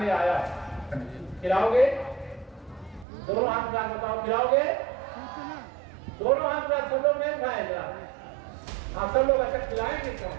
आया है। खिलाओगे? दोनों हाथ में बताओ, खिलाओगे? दोनों हाथ में सब लोग नहीं उठाए जरा। हाँ, सब लोग अच्छा खिलाएंगे।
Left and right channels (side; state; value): left; drops out; at 3.1 s